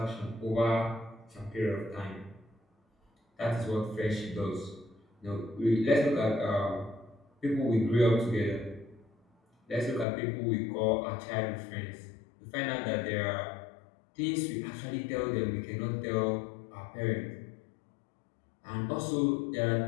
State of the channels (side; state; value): right; drops out; at 10.1 s